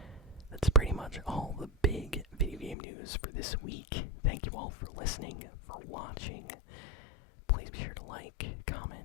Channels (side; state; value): right; drops out; at 2.8 s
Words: that's pretty much all the big video game news for this week. Thank you all for listening, for watching. Please be sure to like,